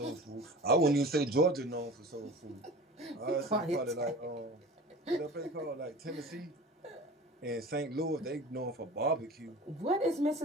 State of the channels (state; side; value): normal; both; correlation 0.38